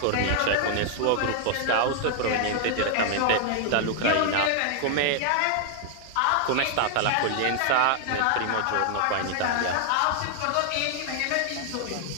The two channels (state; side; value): different; both; correlation 0.00